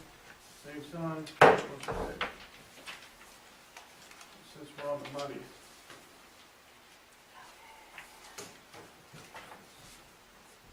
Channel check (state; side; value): identical; both; correlation 1.00